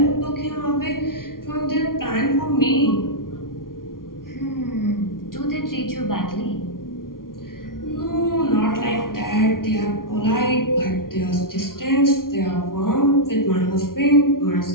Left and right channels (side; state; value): right; late; 0.92 ms